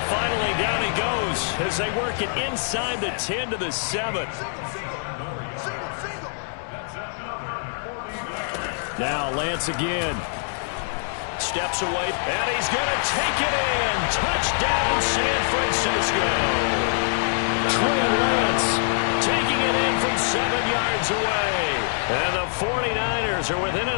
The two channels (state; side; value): silent; right; digital silence